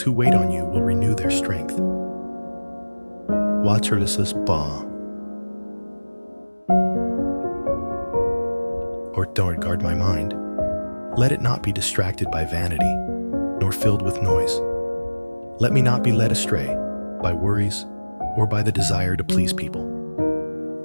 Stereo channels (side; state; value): both; inverted; correlation -1.00